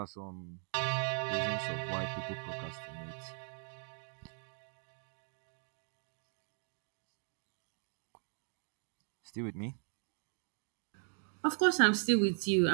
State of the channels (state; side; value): silent; left; 52 dB below the other